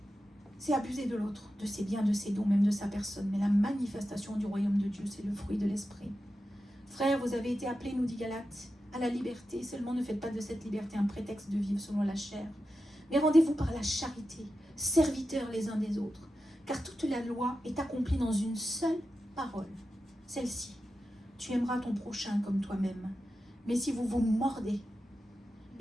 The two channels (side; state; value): both; normal; correlation 0.91